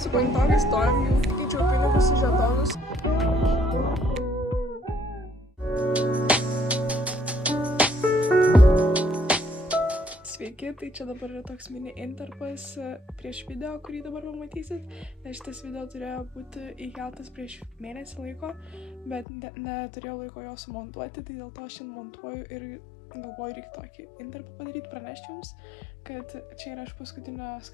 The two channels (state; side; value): drops out; right; at 19.2 s